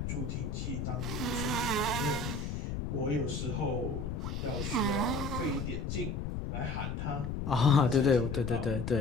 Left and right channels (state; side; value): noise; left; rumble, 3 dB below the sound